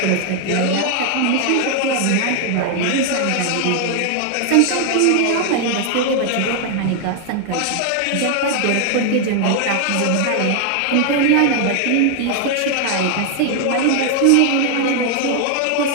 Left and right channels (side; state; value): both; different; correlation 0.00